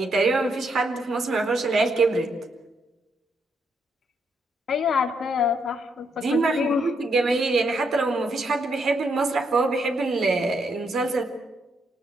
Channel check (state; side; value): normal; both; correlation 0.76